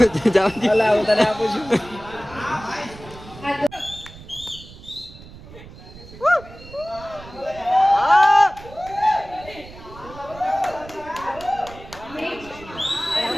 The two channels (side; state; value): right; noise; rumble, 18 dB below the sound